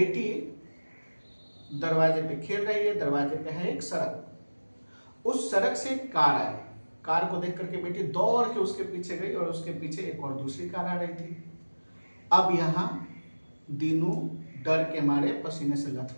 दरवाजे पे खेल रही है। दरवाजे पे है एक सड़क, उस सड़क से एक कार आई। कार को देख करके बेटी दौड़ के उसके पीछे गई और उसके पीछे एक और दूसरी कार आ रही थी। अब यहाँ दीनू डर के मारे पसीने से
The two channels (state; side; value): inverted; both; correlation -1.00